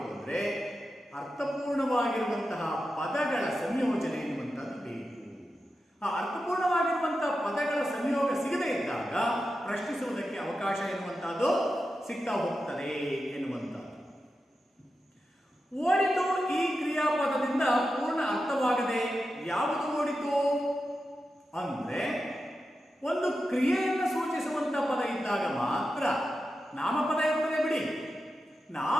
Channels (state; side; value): normal; both; correlation 0.90